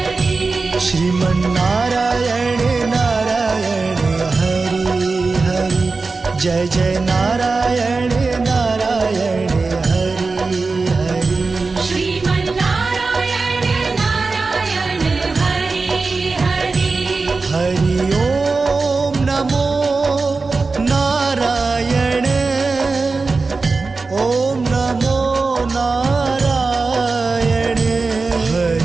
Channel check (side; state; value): left; quieter; 4.0 dB